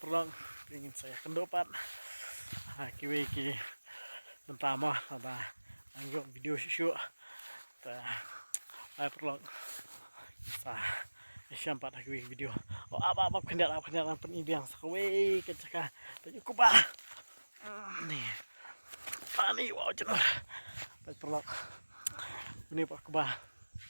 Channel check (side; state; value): both; inverted; correlation -1.00